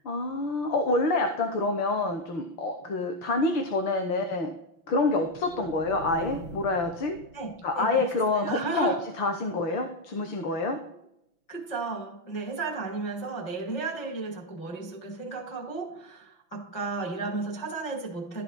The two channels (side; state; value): right; late; 5.9 ms